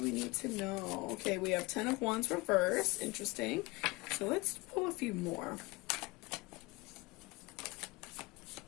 we need to know? Okay, we have 10 of Wands reversed. Interesting. So let's pull a few more.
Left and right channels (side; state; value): right; quieter; 23.7 dB